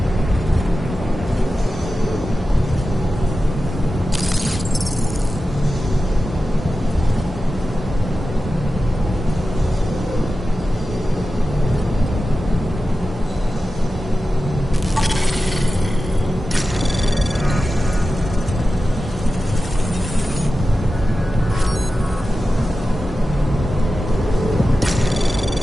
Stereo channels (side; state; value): both; normal; correlation 0.93